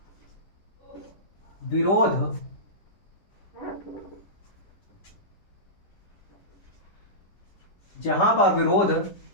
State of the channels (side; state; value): right; late; 10 ms